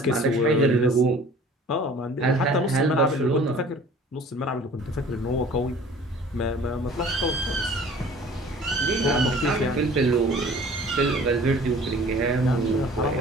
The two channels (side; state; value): both; normal; correlation 0.48